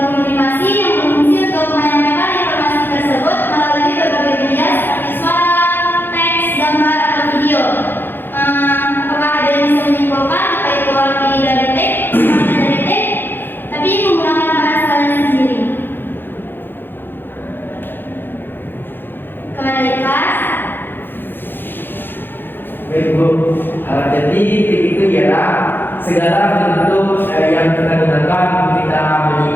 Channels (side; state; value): right; late; 0.098 ms